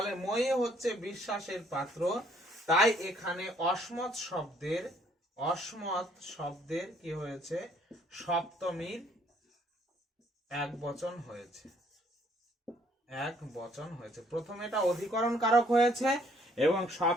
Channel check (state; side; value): normal; both; correlation 0.64